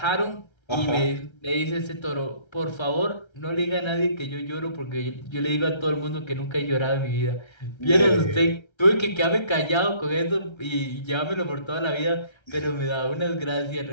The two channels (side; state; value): right; late; 1.3 ms